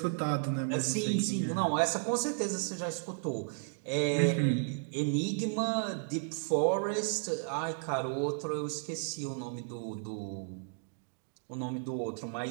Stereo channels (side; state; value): left; silent; digital silence